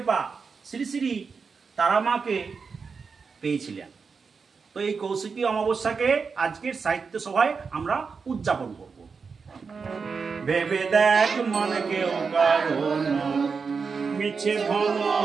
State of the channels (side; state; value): left; quieter; 5.2 dB